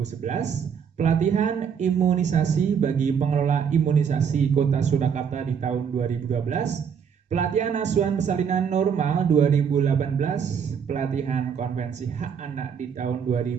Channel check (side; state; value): left; quieter; 7.2 dB